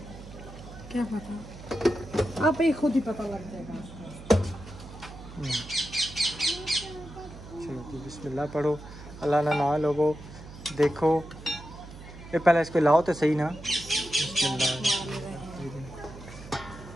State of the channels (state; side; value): noise; right; hum, 15 dB below the sound